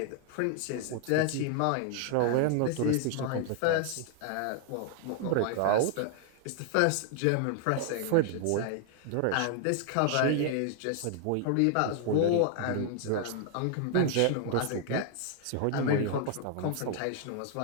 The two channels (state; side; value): different; both; correlation 0.00